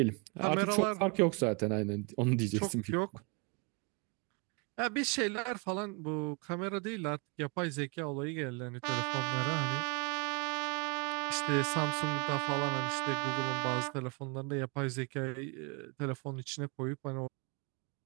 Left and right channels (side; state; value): left; quieter; 32.3 dB